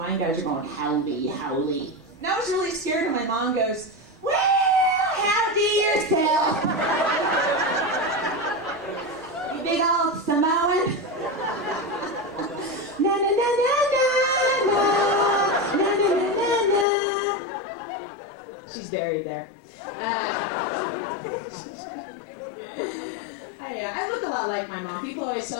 guys are going, howdy, howdy. And I was really scared, and my mom goes, well, howdy yourself. You big old Samoan. Na na na na na na na na na na. She's buried there. I look a lot like my mom. People always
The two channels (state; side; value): drops out; right; at 16.9 s